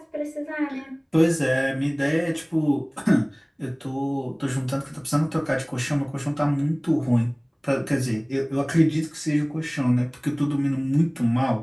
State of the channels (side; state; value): both; identical; correlation 1.00